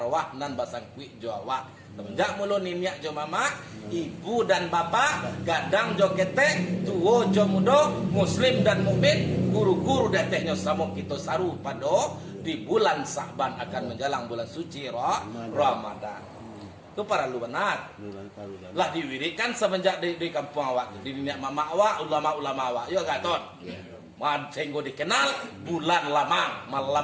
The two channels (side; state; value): both; identical; correlation 1.00